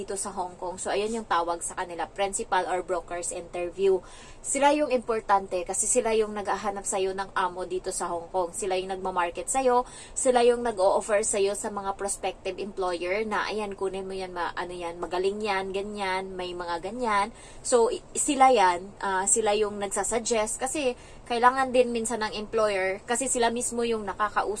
sa Hong Kong. So, ayun yung tawag sa kanila, principal or broker's interview. Sila yung importante kasi sila yung nag-ahanap sa'yo ng amo dito sa Hong Kong. Sila yung nagmamarket sa'yo, sila yung nag-o-offer sa'yo sa mga prospective employer na, ayan, kunin mo yan, magaling yan, ganyan, may mga ganyan. So, sila yan, sila yung nagsasuggest kasi kailangan din minsan ng employer kasi sila mismo yung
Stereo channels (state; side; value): identical; both; correlation 1.00